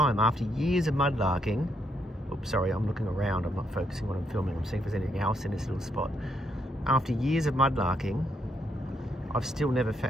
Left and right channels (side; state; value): both; normal; correlation 0.75